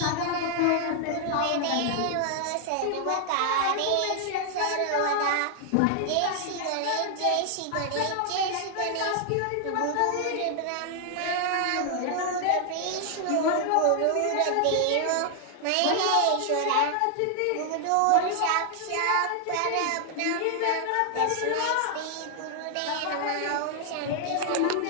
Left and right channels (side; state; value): both; different; correlation 0.00